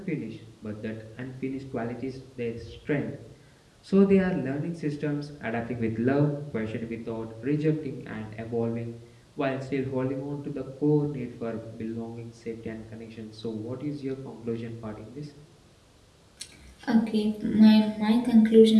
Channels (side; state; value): both; identical; correlation 1.00